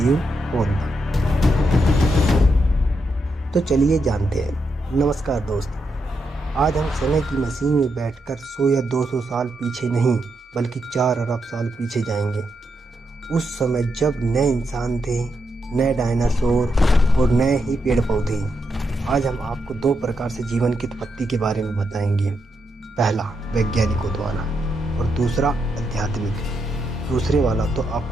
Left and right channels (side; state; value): both; normal; correlation 0.82